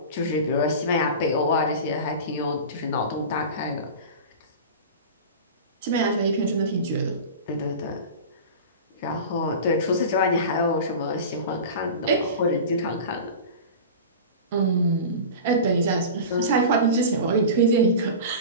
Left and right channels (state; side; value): inverted; both; correlation -0.31